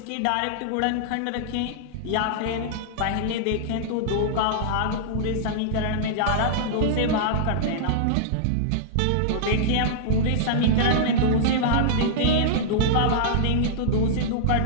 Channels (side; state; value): both; different; correlation -0.02